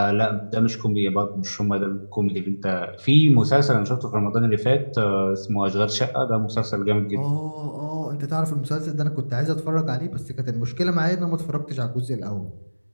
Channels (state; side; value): inverted; both; correlation -1.00